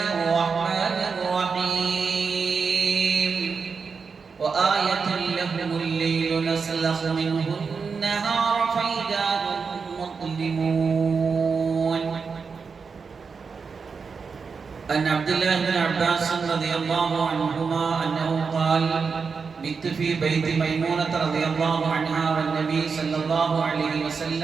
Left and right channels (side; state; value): left; quieter; 5.3 dB